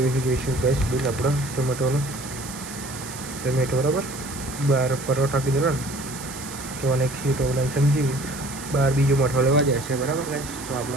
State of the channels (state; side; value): noise; right; hiss, 12 dB below the sound